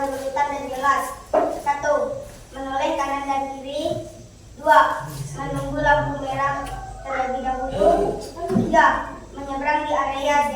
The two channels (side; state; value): both; identical; correlation 1.00